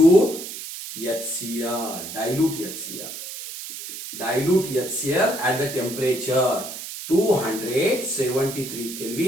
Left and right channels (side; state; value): right; noise; hiss, 9 dB below the sound